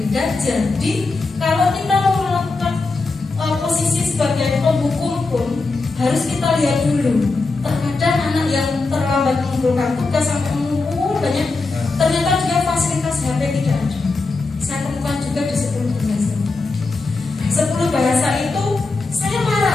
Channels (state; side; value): quieter; right; 3.7 dB